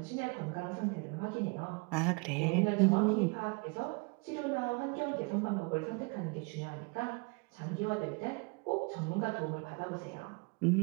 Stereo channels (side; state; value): left; quieter; 31.4 dB